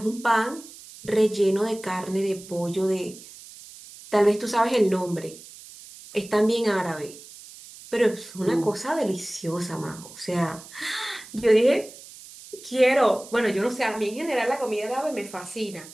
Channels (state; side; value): noise; right; hiss, 18 dB below the sound